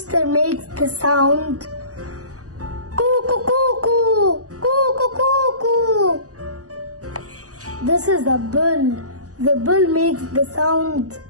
makes the sound coo coo coo coo coo coo coo coo. This is a bull. The bull makes the sound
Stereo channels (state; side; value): late; left; 0.67 ms